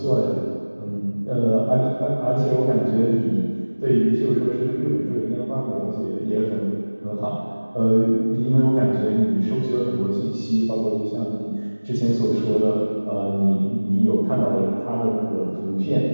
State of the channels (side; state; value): both; inverted; correlation -1.00